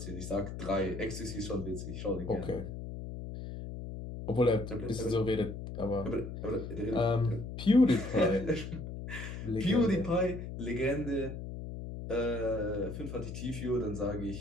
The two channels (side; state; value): left; noise; hum, 8 dB below the sound